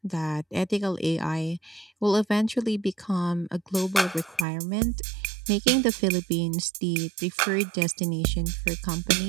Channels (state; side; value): drops out; left; at 4.5 s